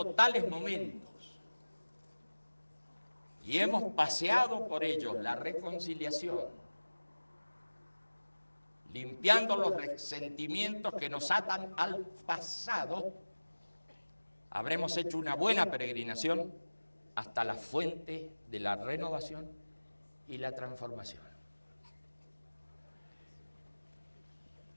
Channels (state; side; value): inverted; both; correlation -1.00